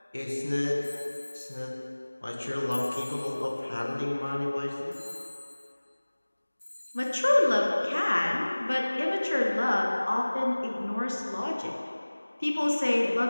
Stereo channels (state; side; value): inverted; both; correlation -1.00